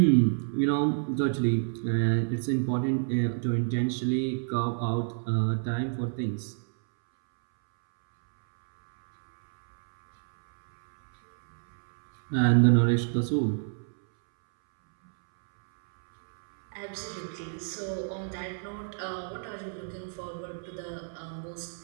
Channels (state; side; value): silent; left; 59 dB below the other